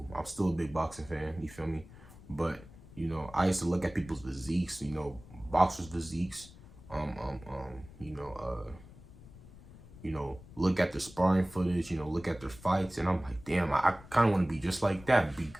I'm still a big boxing fan. You feel me? But, you know, I used to look at people's physiques, you know, boxers' physiques, you know, look at their sparring footage, you know, look at their fights, and I'm like, damn, I kind of want to be just like that, be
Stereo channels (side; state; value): left; noise; rumble, 19 dB below the sound